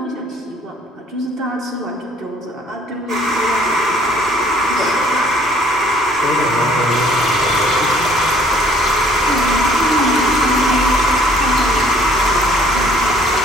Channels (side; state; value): both; normal; correlation 0.58